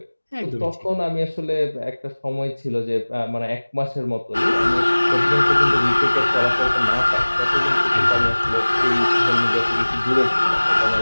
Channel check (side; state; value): both; inverted; correlation -1.00